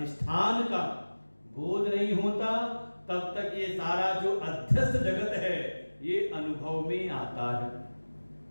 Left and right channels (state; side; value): inverted; both; correlation -1.00